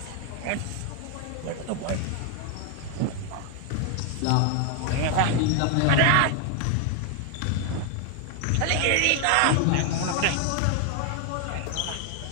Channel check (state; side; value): different; both; correlation 0.00